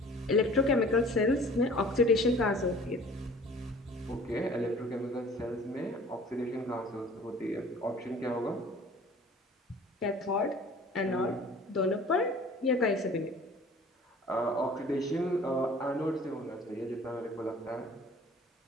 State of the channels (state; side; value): normal; both; correlation 0.48